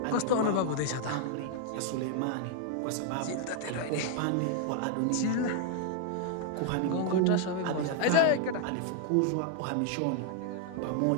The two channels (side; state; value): both; different; correlation 0.00